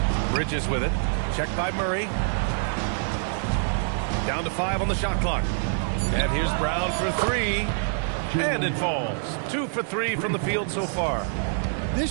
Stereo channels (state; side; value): silent; left; digital silence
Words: Bridges with it. Checked by Murray. Down to 5 on the shot clock. And here's Brown for 3. And it falls. 2 for 3 from the field so far. This